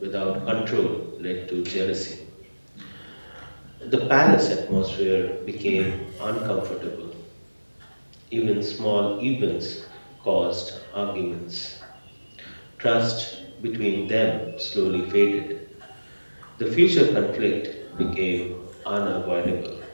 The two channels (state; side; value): inverted; both; correlation -1.00